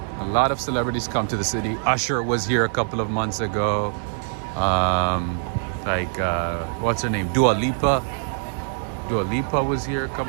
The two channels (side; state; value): left; silent; digital silence